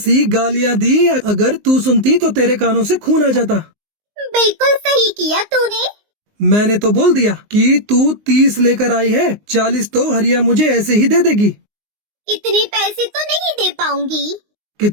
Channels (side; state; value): left; late; 19 ms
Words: गालियां दी, अगर तू सुनती तो तेरे कानों से खून आ जाता। बिल्कुल सही किया तूने। मैंने तो बोल दिया कि तू 30 लेकर आई है, 40 तो हरिया मुझे ऐसे ही दे देगी। इतने पैसे तो नहीं दे पाऊंगी।